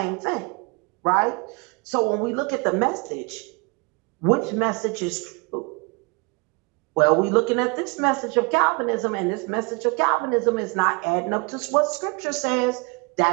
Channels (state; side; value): quieter; left; 30.3 dB